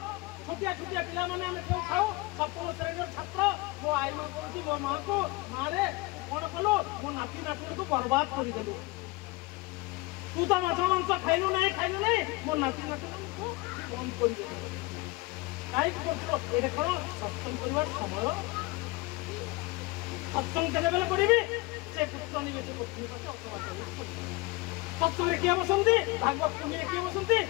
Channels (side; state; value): right; quieter; 22.8 dB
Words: ଛୋଟିଆ ଛୋଟିଆ ପିଲାମାନେ ଆମେ କେଉଁ ଖାଉ ସପ୍ତମ ଶ୍ରେଣୀର ଛାତ୍ର ମୋ ଆଈ ମା କହୁଛି ମୋ ମାଆକୁ ମାରେ କଣ କଲୁ ମୋ ନାତି ନାତୁଣୀକୁ ବର୍ବାଦ କରିଦେଲୁ ତୁ ତ ମାଛ ମାଂସ ଖାଇଲୁ ନାହିଁ ମୋ ନାତି ନାତୁଣୀକୁ ବନ୍ଦ କରିଦେଲୁ କାହିଁକି କରୁଥିଲ ଏଇଟା କଣ ସତ୍ସଙ୍ଗ କରିବାର ସମୟ ସତ୍ସଙ୍ଗ କେତେବେଳେ କରିବି ସେ ପୁତ୍ର ନିବେଶ ପତ୍ନୀ ସତ୍ସଙ୍ଗରେ କିଏ ବସନ୍ତି ଭାଗବତ ପୁଣ୍ୟରେ କିଏ ବସନ୍ତି